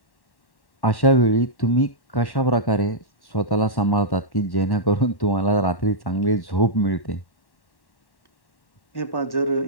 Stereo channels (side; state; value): right; late; 1.1 ms